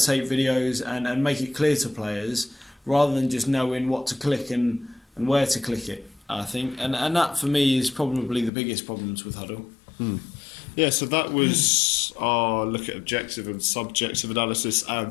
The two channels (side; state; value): right; drops out; at 8.5 s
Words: videos and make it clear to players, rather than just knowing what to click and where to click it, I think. And that for me is probably the biggest problems with Huddle. Yeah, so that was our look at objective and subjective analysis